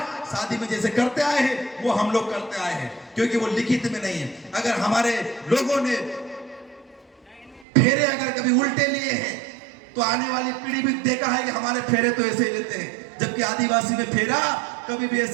शादी में जैसे करते आए हैं वो हम लोग करते आए हैं, क्योंकि वो लिखित में नहीं है। अगर हमारे लोगों ने फेरे अगर कभी उल्टे लिए हैं तो आने वाली पीढ़ी भी देखा है कि हमारे फेरे तो ऐसे ही लेते हैं, जबकि आदिवासी में फेरा कभी भी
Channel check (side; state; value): left; drops out; at 7.7 s